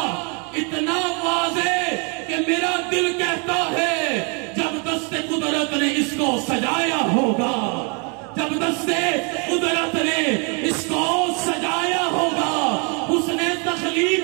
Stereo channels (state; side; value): quieter; left; 35.1 dB